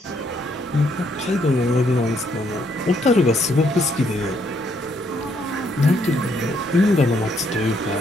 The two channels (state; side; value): normal; both; correlation 0.71